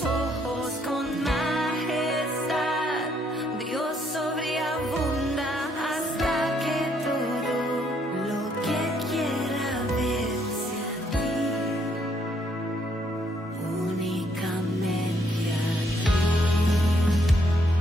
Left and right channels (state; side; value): normal; both; correlation 0.70